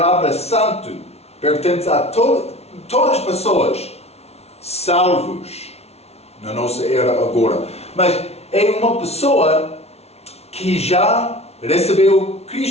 santo pertence a todas as pessoas salvos na nossa era agora. Mas é uma pessoa que já recebeu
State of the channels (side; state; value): right; late; 0.31 ms